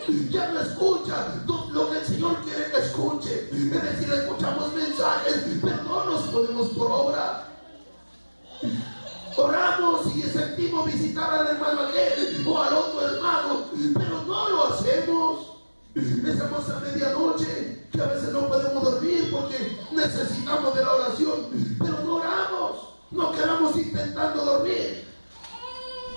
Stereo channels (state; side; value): inverted; both; correlation -1.00